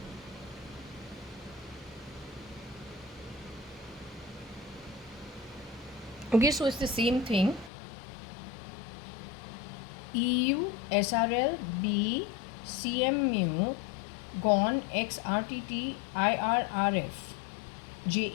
okay, so it's the same thing. EU SRL B CM mu gone X RTT IRRF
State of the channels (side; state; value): right; drops out; at 7.7 s